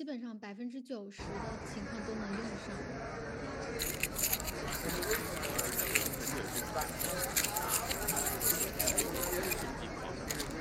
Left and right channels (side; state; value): both; identical; correlation 1.00